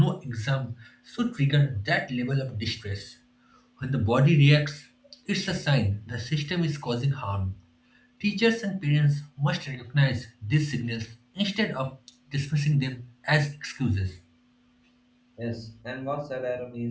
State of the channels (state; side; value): identical; both; correlation 1.00